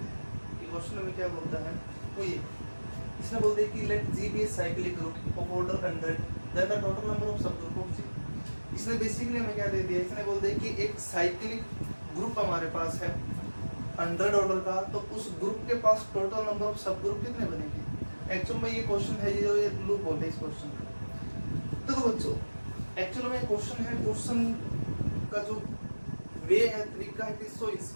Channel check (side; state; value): both; inverted; correlation -1.00